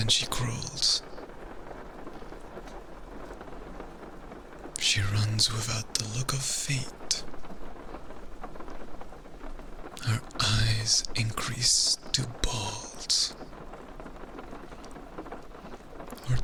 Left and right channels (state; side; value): identical; both; correlation 1.00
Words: she crawls. She runs without the look of feet. Her eyes increase to balls. Her